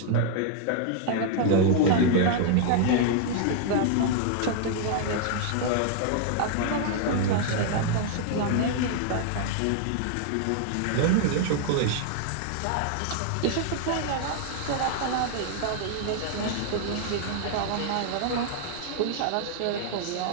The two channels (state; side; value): different; both; correlation 0.00